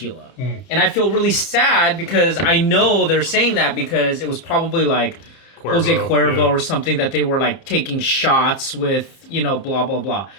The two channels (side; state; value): right; late; 31 ms